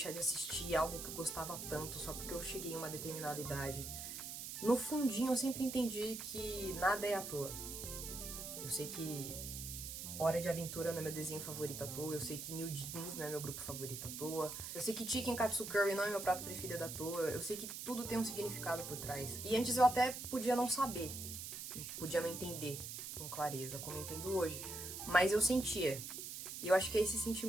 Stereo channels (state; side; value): noise; right; hiss, 7 dB below the sound